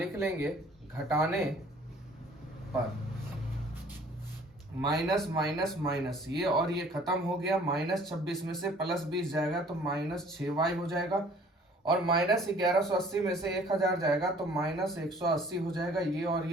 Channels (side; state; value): both; normal; correlation 0.54